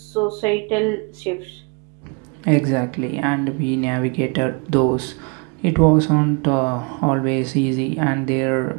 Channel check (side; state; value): left; quieter; 33.1 dB